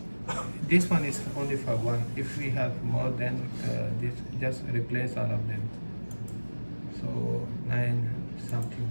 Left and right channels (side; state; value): both; inverted; correlation -1.00